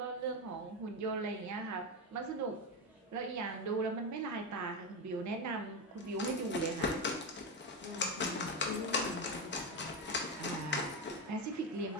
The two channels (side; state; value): both; normal; correlation 0.13